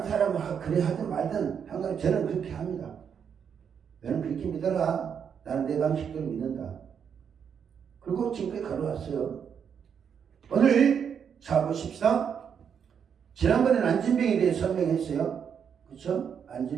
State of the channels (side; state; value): left; quieter; 7.5 dB